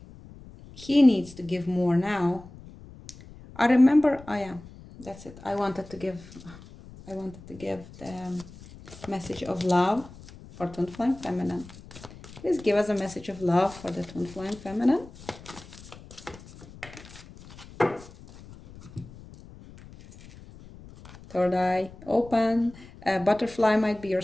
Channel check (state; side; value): noise; left; rumble, 19 dB below the sound